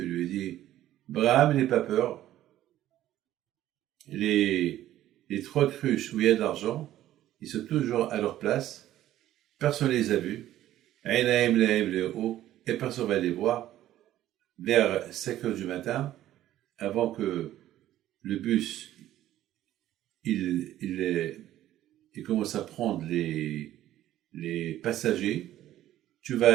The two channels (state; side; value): quieter; left; 13.3 dB